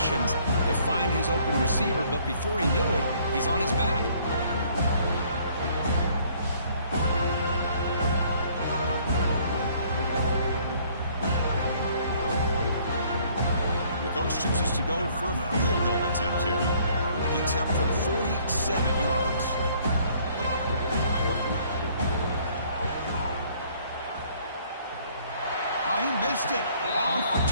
to find his open receiver, but before he knew it, he's on his back. The coach chooses to go for a field goal attempt here. The attempt from 47 yards. He missed it. Off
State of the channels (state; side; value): inverted; both; correlation -0.61